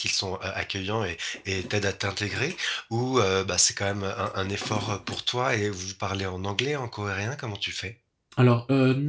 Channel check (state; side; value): identical; both; correlation 1.00